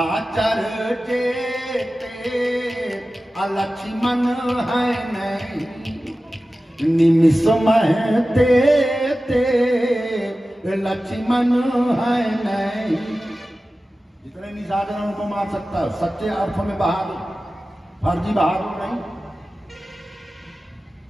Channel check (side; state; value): both; normal; correlation 0.95